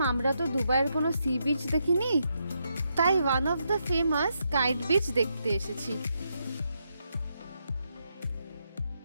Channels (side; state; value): both; inverted; correlation -0.81